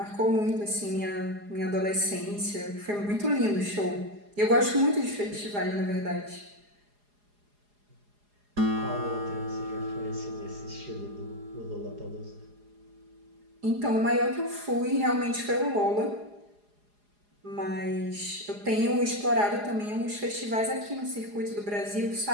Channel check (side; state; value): left; late; 4.8 ms